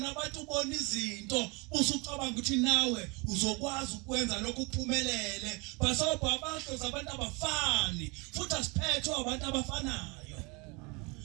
abantu ubona izinto usucabanga ukuthi nawe uzokwazi ukwenza lokho uphumelele basobha abahlozi abantu abafani futhi asiphethwe abantu abafanayo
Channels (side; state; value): left; quieter; 28.6 dB